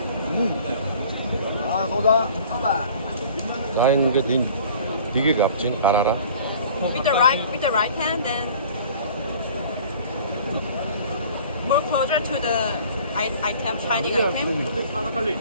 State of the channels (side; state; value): both; inverted; correlation -0.48